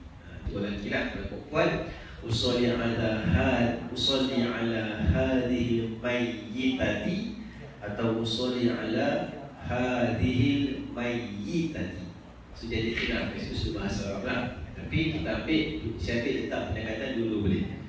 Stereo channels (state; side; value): identical; both; correlation 1.00